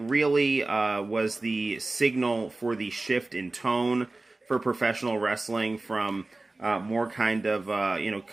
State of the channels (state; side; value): quieter; left; 3.1 dB